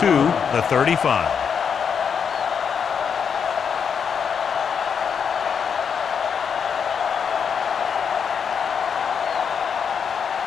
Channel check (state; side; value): quieter; right; 6.9 dB